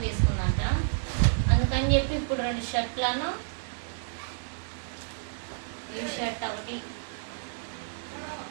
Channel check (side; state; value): left; silent; digital silence